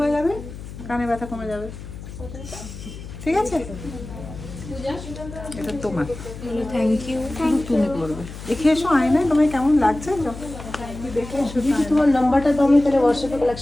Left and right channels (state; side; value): noise; left; hum, 12 dB below the sound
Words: যাবে, কানের ব্যথা কমে যাবে, ঠিক আছে? এটা তোমার, থ্যাংক ইউ। শুধু তুমি করবে। দেখে এসো আয়নায় তোমায় কেমন লাগছে, দেখে এসো। তোমার নাম্বারটা তো আমি তাহলে হোয়াটসঅ্যাপে